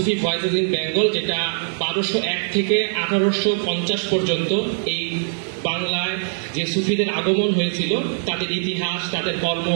ভয়েসেস ইন বেঙ্গল, যেটা 1201 থেকে 1850 পর্যন্ত এই বাংলায় যে সুফিদের আগমন হয়েছিল তাদের ইতিহাস, তাদের কর্ম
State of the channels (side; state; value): left; silent; digital silence